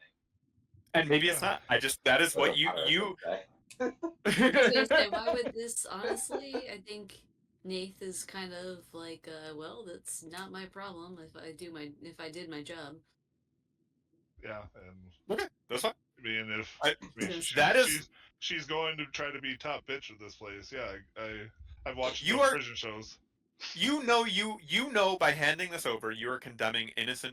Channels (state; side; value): identical; both; correlation 1.00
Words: And maybe it's not. That is That's what what Paris you would say. I was gonna say, why would this? Honestly, I think Nath is kind of like, well, that's not my problem if I did my job. Yeah, and Okay, that's fine. I mean, if I- I mean, that is she's going to try to be top bitch of this place. Yeah, I've watched You enough are- prison shows. you know by handing this over you are condemning